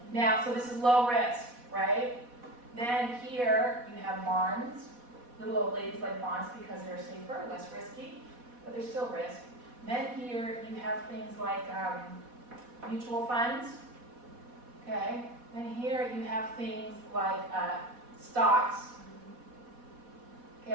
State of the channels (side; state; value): left; late; 4.1 ms